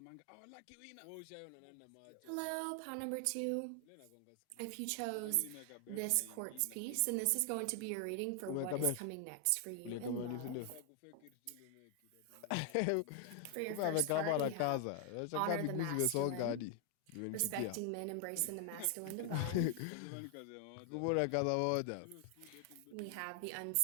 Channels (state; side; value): different; both; correlation 0.00